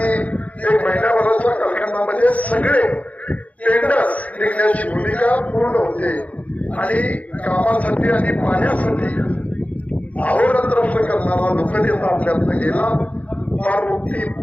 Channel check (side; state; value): right; late; 0.070 ms